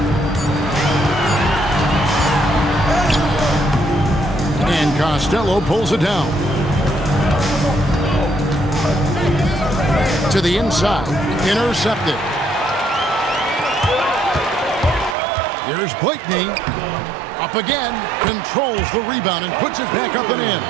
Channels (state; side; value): drops out; left; at 15.2 s